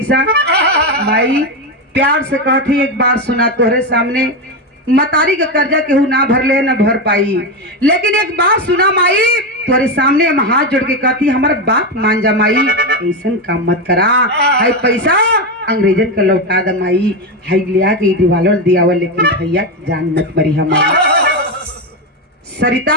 माई प्यार से कहती, एक बार सुना तोहरे सामने, मतारी का कर्जा केहू ना भर ले ना भर पाई, लेकिन एक बात सुना माई, तोरे सामने हम हाथ जोड़ के कहती, हमारा बात मान जा माई, ऐसा काम मत करा, हाई पैसा अंग्रेजन का लौटा द माई, हाई लिया के दिवालों दियावा, लेकिन भैया जान मत मरी हमारा।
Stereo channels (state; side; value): normal; both; correlation 0.12